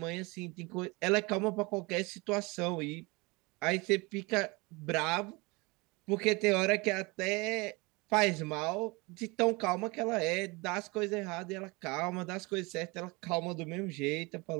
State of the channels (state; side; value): quieter; left; 25.9 dB